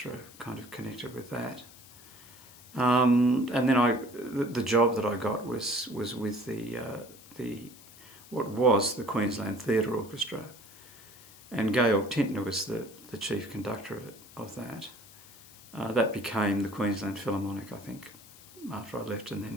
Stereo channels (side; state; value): left; noise; hiss, 21 dB below the sound